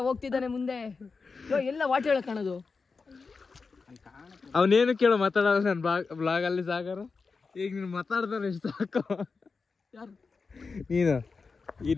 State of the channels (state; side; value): quieter; right; 4.6 dB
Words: ಹೋಗ್ತಿದ್ದಾನೆ ಮುಂದೆ. ಎಲ್ಲ ವಾಟರ್ ಕಾಣೋದು. ಅವನೇನು ಕೇಳೋ ಮಾತಾಡೋದು ನನ್ ಬ್ಲಾಗ್ ಅಲ್ಲಿ ಸಾಗರ. ಈಗ ನೀನು ಮಾತಾಡ್ತಾನೆ ಎಷ್ಟು ಸಾಕು. ನೀನು